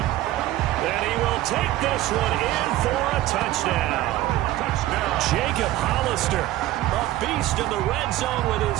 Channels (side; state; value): left; quieter; 15.3 dB